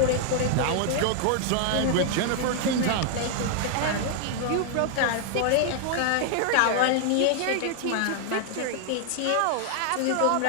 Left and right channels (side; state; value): both; different; correlation 0.00